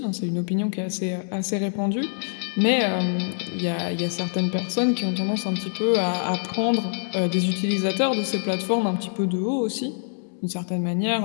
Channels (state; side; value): silent; right; digital silence